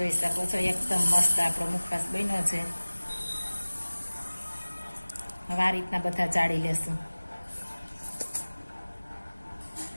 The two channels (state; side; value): inverted; both; correlation -1.00